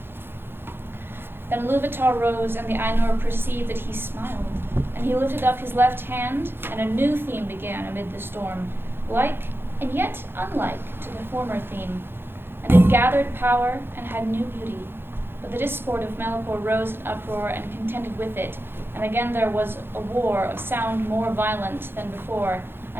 Then Iluvatar rose, and the Ainur perceived that he smiled, and he lifted up his left hand, and a new theme began amid the storm, like and yet unlike to the former theme, and it gathered power and had new beauty. But the discord of Melkor rose in uproar and contended with it, and again there was a war of sound more violent than before,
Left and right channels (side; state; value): left; late; 0.10 ms